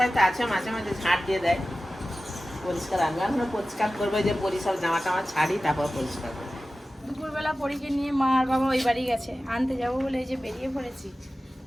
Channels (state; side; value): normal; both; correlation 0.95